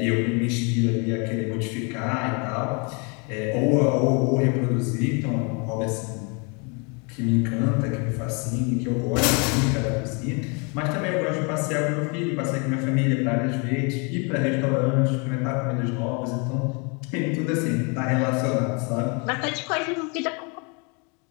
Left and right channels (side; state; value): right; quieter; 33.4 dB